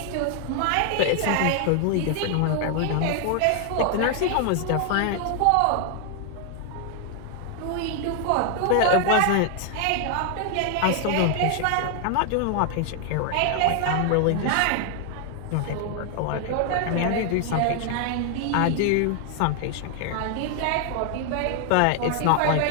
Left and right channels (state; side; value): different; both; correlation 0.00